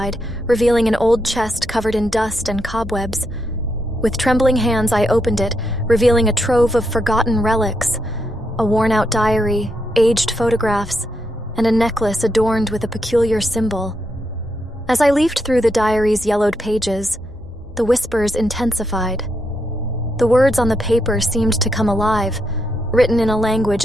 revealing an old chest covered in dust and cobwebs. With trembling hands, I opened it, revealing a trove of forgotten relics, a worn-out diary, aged photographs, and a necklace adorned with a peculiar symbol. As I leafed through the diary's yellowed pages, the whispers intensified. The words on the paper seemed to come alive, written in a language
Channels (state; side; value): normal; both; correlation 0.81